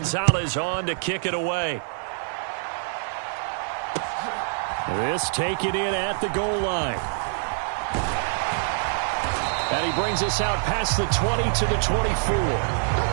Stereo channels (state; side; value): silent; left; digital silence